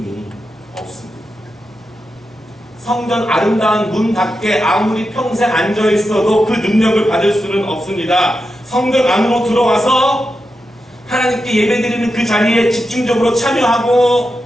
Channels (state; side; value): normal; both; correlation 0.88